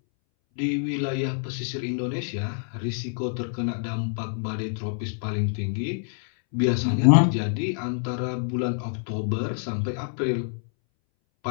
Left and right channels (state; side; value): silent; right; 61 dB below the other